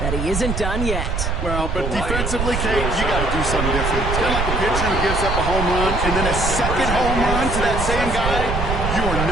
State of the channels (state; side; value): noise; right; rumble, 2 dB below the sound